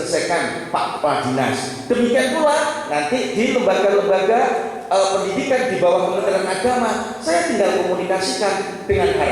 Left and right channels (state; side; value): identical; both; correlation 1.00